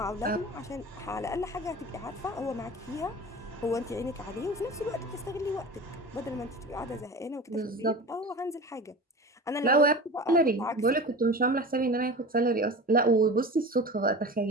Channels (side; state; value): both; normal; correlation 0.34